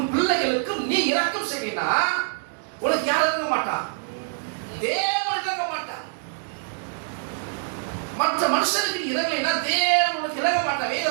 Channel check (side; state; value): left; silent; digital silence